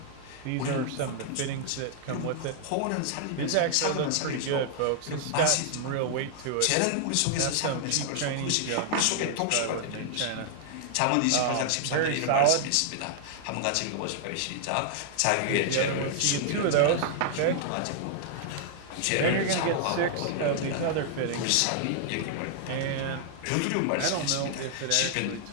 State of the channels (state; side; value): different; both; correlation -0.01